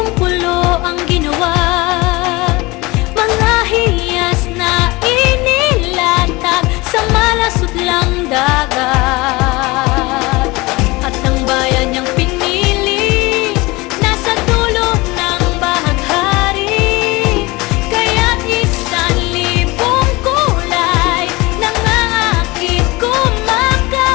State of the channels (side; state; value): right; quieter; 22.9 dB